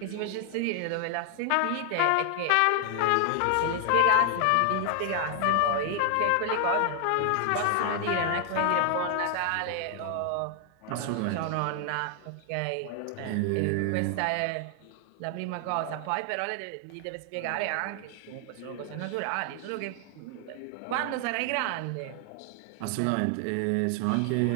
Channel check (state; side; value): different; both; correlation 0.00